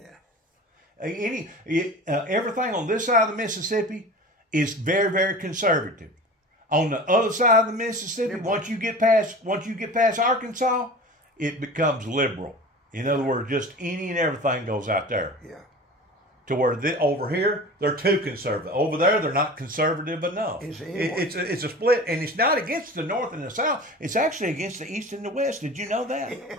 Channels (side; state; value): both; normal; correlation 0.36